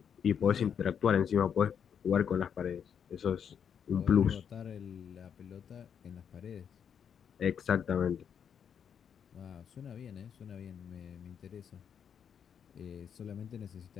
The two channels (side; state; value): right; quieter; 7.8 dB